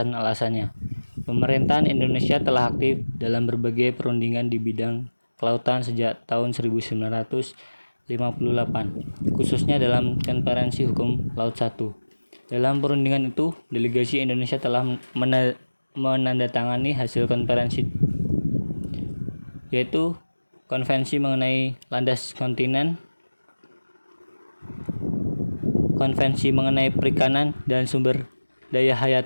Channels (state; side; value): inverted; both; correlation -1.00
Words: Pemerintahan Indonesia telah aktif dalam berbagai perundingan di bidang kelautan sejak tahun 1958, khususnya dalam Konferensi Hukum Laut 1. Dalam perundingan itu, delegasi Indonesia telah menandatangani hasil konferensi, yaitu Konvensi mengenai landas kontinen, Konvensi mengenai perikanan dan sumber daya